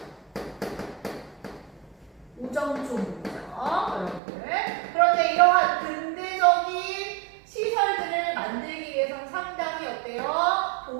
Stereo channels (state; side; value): drops out; left; at 4.2 s